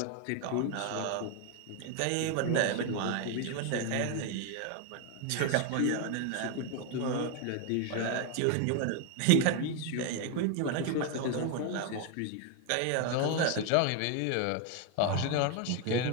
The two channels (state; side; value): different; both; correlation 0.01